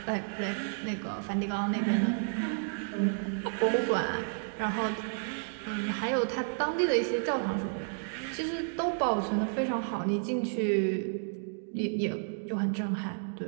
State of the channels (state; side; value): silent; left; digital silence